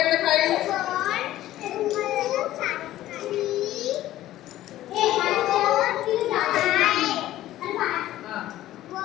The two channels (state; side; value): quieter; right; 14.3 dB